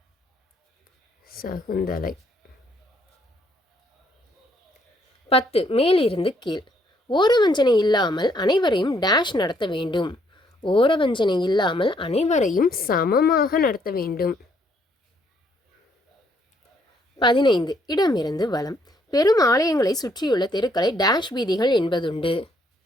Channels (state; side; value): normal; both; correlation 0.69